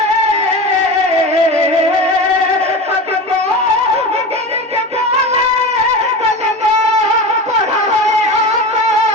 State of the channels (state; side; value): normal; both; correlation 0.28